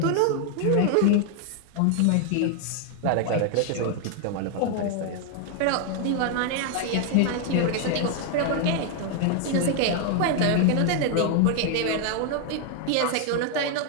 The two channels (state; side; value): different; both; correlation 0.00